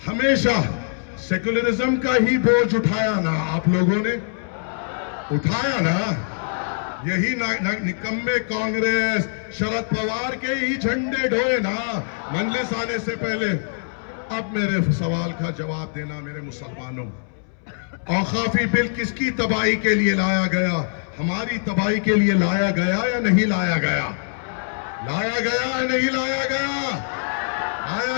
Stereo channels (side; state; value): right; silent; 63 dB below the other